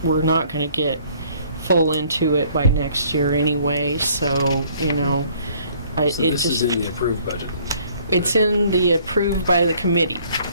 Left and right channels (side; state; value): both; inverted; correlation -0.60